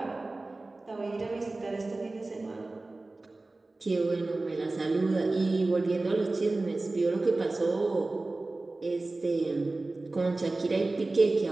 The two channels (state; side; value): quieter; left; 3.1 dB